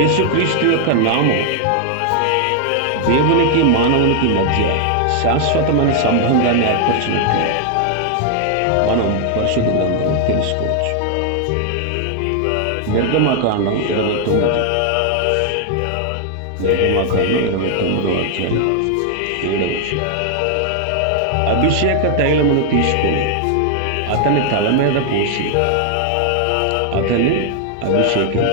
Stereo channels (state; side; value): different; both; correlation 0.00